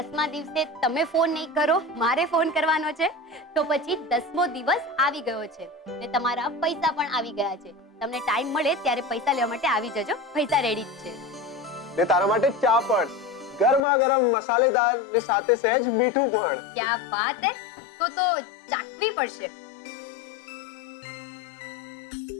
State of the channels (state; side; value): drops out; right; at 13.8 s